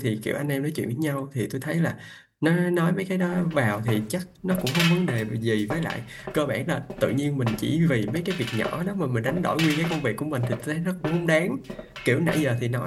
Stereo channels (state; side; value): identical; both; correlation 1.00